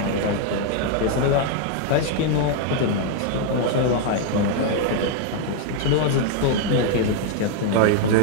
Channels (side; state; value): both; different; correlation 0.00